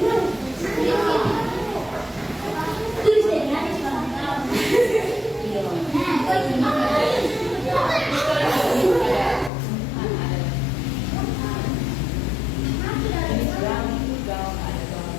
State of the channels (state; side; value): drops out; right; at 9.5 s